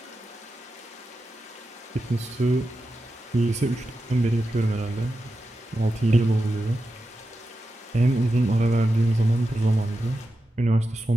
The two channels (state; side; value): normal; both; correlation 0.90